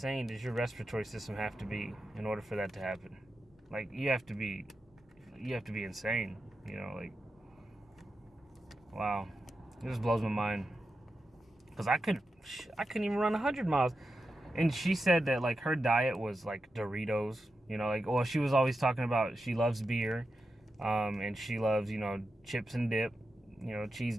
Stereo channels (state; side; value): normal; both; correlation 0.89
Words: does your respiratory system have to be in order for that to happen? Like you have to be insane, like wow. It just blows my mind. Because I couldn't even run 100 miles. And she said that, like, her diet was, like, Doritos. You know, like, well, she was always talking about she loves beer. And she loves, you know, chips and dip. You know, cheese